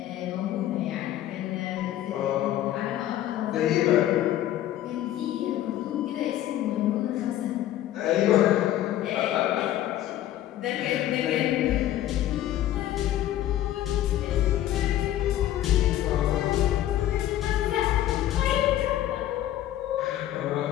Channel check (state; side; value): quieter; right; 12.9 dB